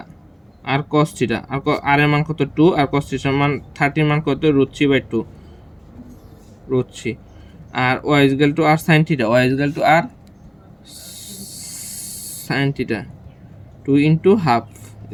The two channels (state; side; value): identical; both; correlation 1.00